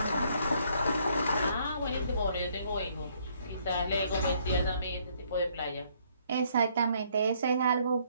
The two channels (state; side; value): inverted; both; correlation -0.66